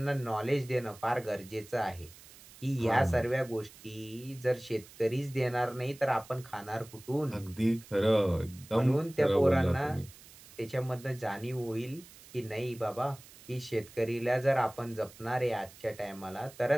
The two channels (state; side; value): noise; right; hiss, 21 dB below the sound